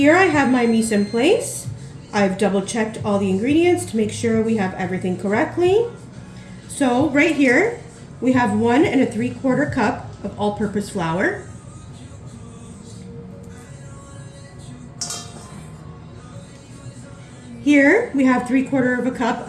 I have my mise en place. I've double checked all the ingredients to make sure we have everything correctly. So right here we have 1 3/4 cup of all-purpose flour. Here we have 3/4 cup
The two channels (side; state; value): both; identical; correlation 1.00